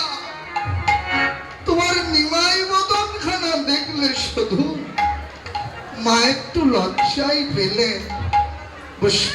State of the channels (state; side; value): identical; both; correlation 1.00